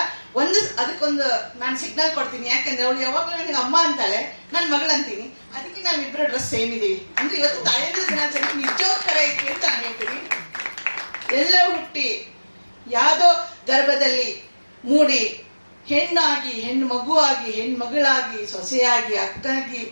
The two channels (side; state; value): both; inverted; correlation -1.00